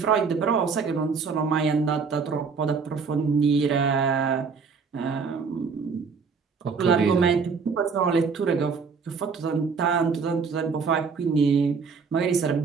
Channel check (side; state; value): left; quieter; 5.4 dB